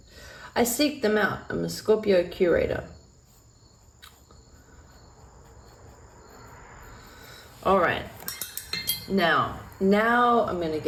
I seek them out. I'm a Scorpio curator. All right. Now I'm going to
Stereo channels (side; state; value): both; identical; correlation 1.00